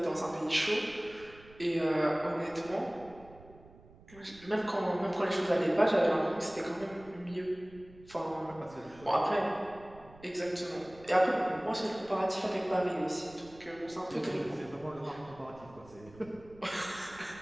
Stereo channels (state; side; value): noise; right; rumble, 22 dB below the sound